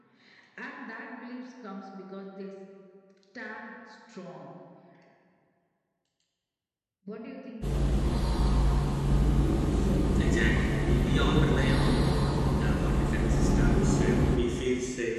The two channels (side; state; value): both; identical; correlation 1.00